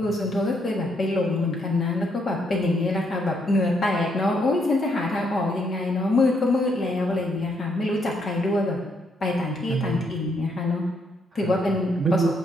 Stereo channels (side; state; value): both; normal; correlation 0.74